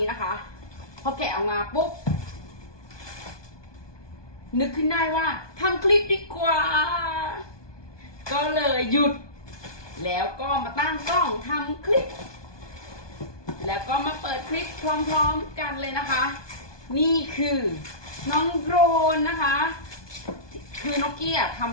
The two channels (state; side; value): late; right; 1.2 ms